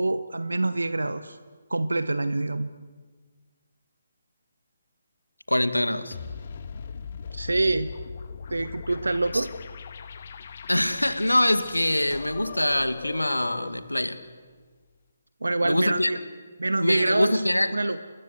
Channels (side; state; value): both; inverted; correlation -0.97